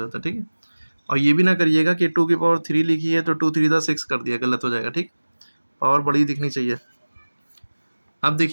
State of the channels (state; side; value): inverted; both; correlation -1.00